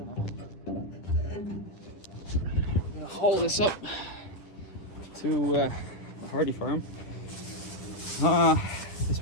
gonna haul this up to the Hardy farm. This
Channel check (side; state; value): right; late; 10 ms